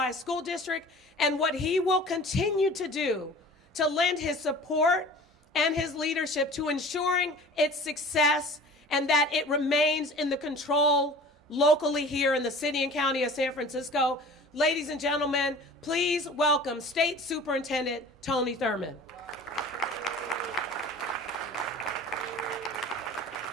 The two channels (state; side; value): normal; both; correlation 0.42